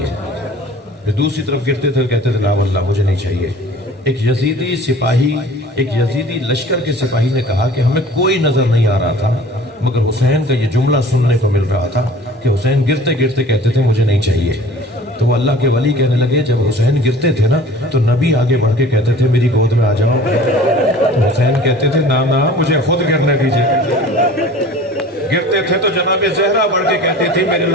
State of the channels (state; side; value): normal; both; correlation 0.45